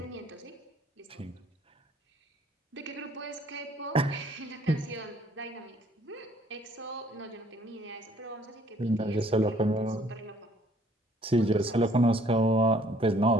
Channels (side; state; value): both; normal; correlation 0.60